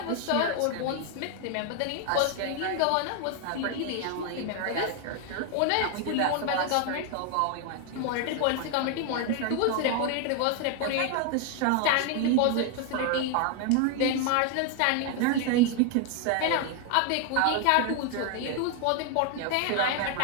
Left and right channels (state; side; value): different; both; correlation 0.01